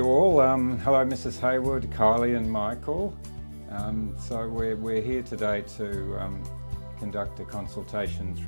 all. Hello Mrs Hayward, Kylie and Michael. So we're here today to conduct a consultation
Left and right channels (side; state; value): both; inverted; correlation -1.00